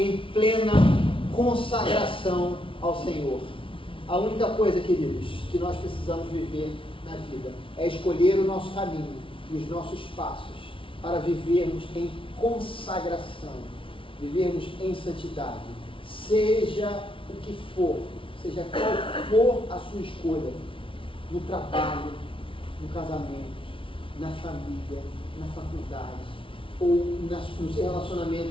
plena consagração ao Senhor. A única coisa, queridos, que nós precisamos viver na vida é escolher o nosso caminho e os nossos passos para vivermos em consagração, vivermos em santidade, seja o que for, seja qual for a sua escolha, no trabalho, no casamento, na família, na faculdade, ou no seu relacionamento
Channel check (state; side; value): late; right; 0.25 ms